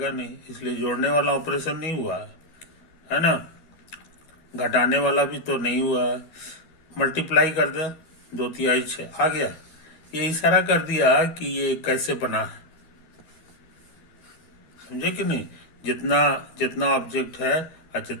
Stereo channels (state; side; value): late; right; 13 ms